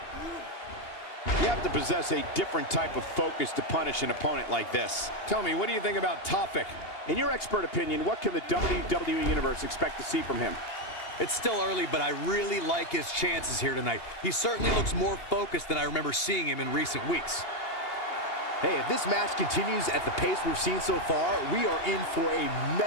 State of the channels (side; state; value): right; late; 2.8 ms